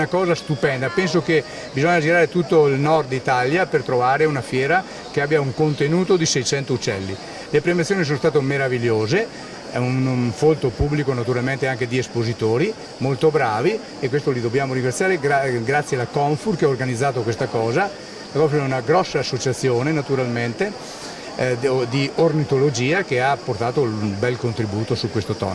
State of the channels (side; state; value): both; identical; correlation 1.00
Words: cosa stupenda. Penso che bisogna girare tutto il nord Italia per trovare una fiera che abbia un contenuto di 600 uccelli. Le premiazioni sono state meravigliose. È un folto pubblico naturalmente anche di espositori molto bravi e questo li dobbiamo ringraziare grazie alla Confur che ha organizzato questa cosa. La Confur è una grossa associazione naturalmente di ornitologia che ha portato un bel contributo su questo